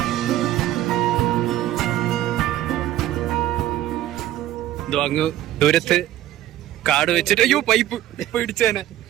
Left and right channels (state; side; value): quieter; left; 13.6 dB